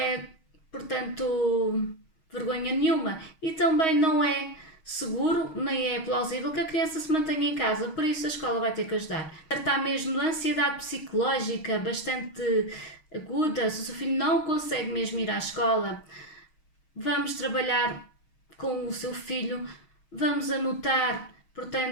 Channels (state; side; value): late; right; 6.3 ms